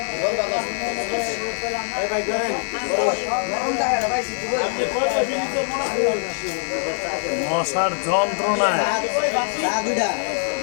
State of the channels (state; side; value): silent; right; 64 dB below the other